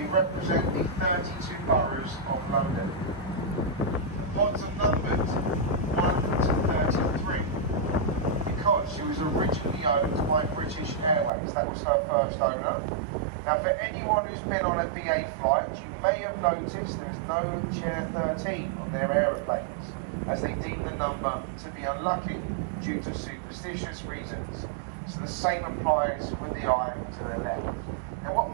represent the 32 boroughs of London. The pods are numbered 1 to 33 because she was originally owned by British Airways. That was her first owner. Now for anyone who's been on a BA flight, you may have noticed there's no chair 13 on their aeroplanes, as they deem the number to be unlucky due to superstitious reasons. So the same applies with the eye to the left. Now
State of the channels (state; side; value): drops out; left; at 11.3 s